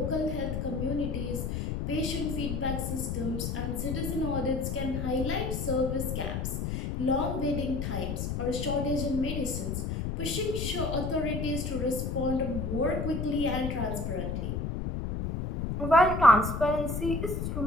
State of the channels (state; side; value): noise; left; rumble, 2 dB below the sound